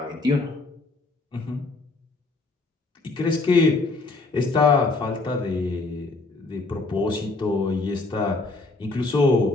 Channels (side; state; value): right; quieter; 3.4 dB